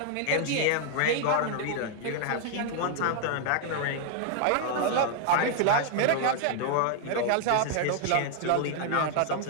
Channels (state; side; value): different; both; correlation 0.00